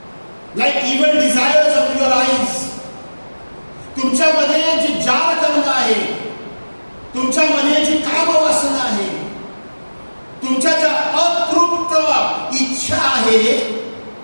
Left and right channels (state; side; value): inverted; both; correlation -1.00